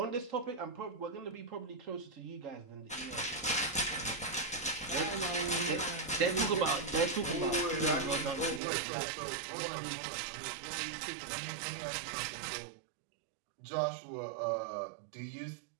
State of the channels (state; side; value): drops out; left; at 8.6 s